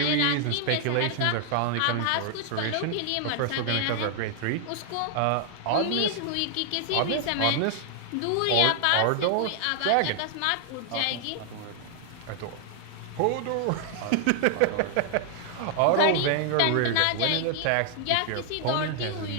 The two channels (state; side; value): different; both; correlation 0.00